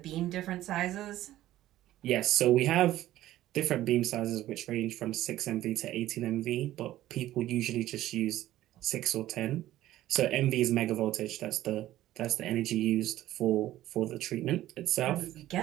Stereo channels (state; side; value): quieter; left; 14.3 dB